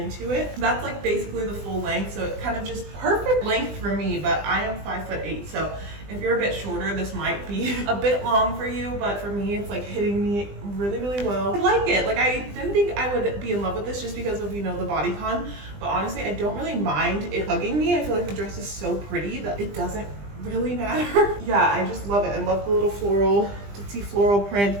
it. That's like basically the full length. So it's kind of just perfect length for me, but I am 5'8", so if you're a bit shorter, this might be a bit long for you, but for me, it's like hitting me really, really well. I like it. Like, I didn't think I would be in love with this just because of, you know, the bodycon, but honestly, I don't really mind it hugging me. I feel like the dress is so pretty that it doesn't really matter. Yeah, I just love it. I love the little floral, ditzy floral print.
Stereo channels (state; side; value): late; left; 20 ms